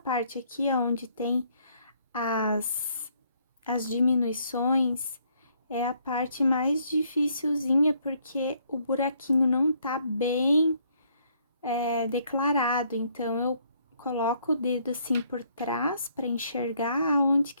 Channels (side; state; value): both; inverted; correlation -0.68